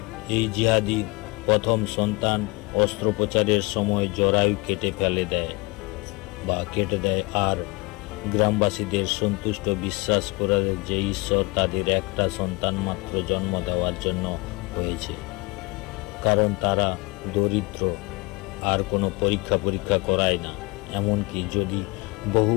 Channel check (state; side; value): quieter; right; 25.5 dB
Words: এই জিহাদি প্রথম সন্তান অস্ত্রোপচারের সময় জরায়ু কেটে দেয়, আর গ্রামবাসীদের সন্তুষ্ট বিশ্বাস করে যে ঈশ্বর তাদের একটা সন্তান মাত্র জন্ম দেওয়ার জন্য হয়েছে, কারণ তারা দরিদ্র, আর কোনো পরীক্ষা করায় না। এমনকি যদি বহু